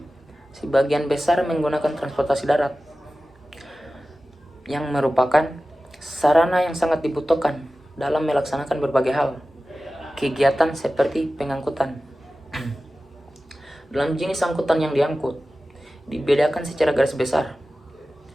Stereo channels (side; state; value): both; normal; correlation 0.95